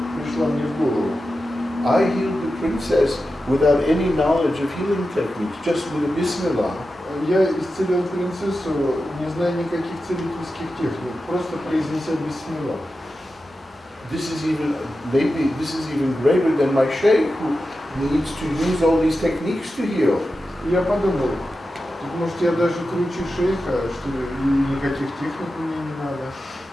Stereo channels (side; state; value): both; normal; correlation 0.91